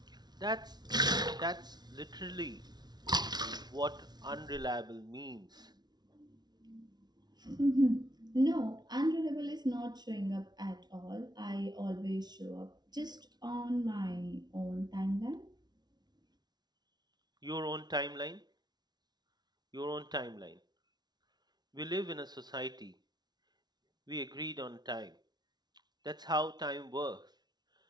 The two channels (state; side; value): late; left; 0.20 ms